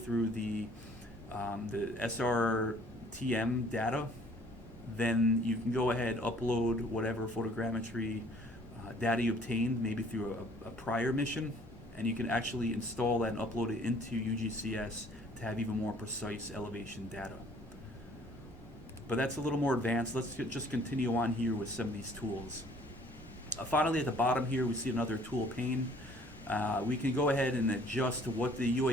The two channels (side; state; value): both; normal; correlation 0.57